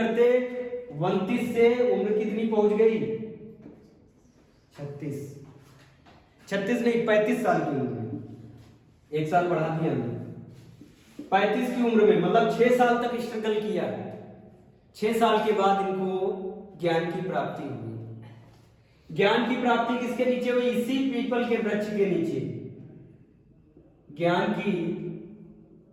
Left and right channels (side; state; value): both; identical; correlation 1.00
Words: 29 से उम्र कितनी पहुंच गई, 36 नहीं 35 साल की उम्र में, एक साल बढ़ा दिया हमने, 35 की उम्र में, मतलब 6 साल तक स्ट्रगल किया। 6 साल के बाद इनको ज्ञान की प्राप्ति हुई। ज्ञान की प्राप्ति किसके नीचे हुई, इसी पीपल के वृक्ष के नीचे ज्ञान की